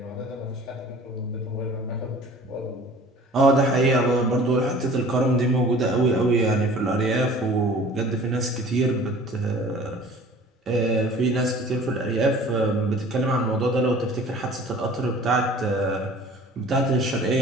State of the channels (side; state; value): both; normal; correlation 0.47